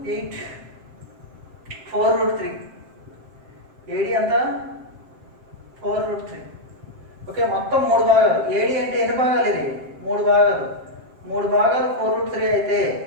8, 4√3. AD అంతా 4√3. ఓకే, మొత్తం 3 భాగాలు. ఏడి అంటే ఎన్ని భాగాలు? ఇది 3 భాగాలు. 3 భాగాలు 4√3 అయితే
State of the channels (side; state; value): left; late; 7.6 ms